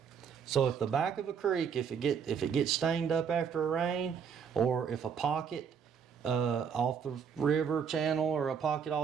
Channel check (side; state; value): left; quieter; 6.9 dB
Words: So if the back of a creek, if it gets stained up after a rain, or if a pocket off the river channel, or a pocket